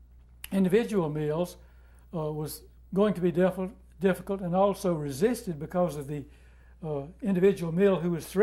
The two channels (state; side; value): identical; both; correlation 1.00